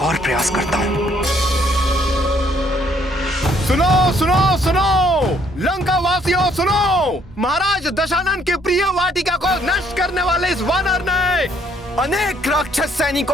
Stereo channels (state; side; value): normal; both; correlation 0.66